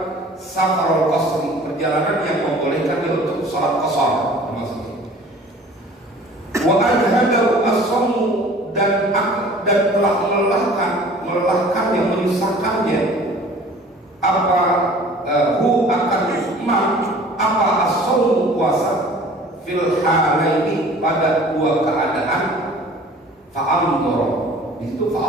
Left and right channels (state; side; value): normal; both; correlation 0.48